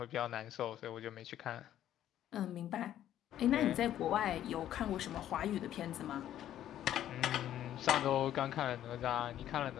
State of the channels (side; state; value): right; quieter; 11.7 dB